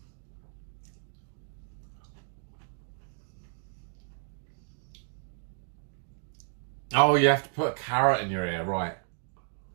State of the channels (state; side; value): silent; left; digital silence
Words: Oh, you have to put a carrot in your ear, right.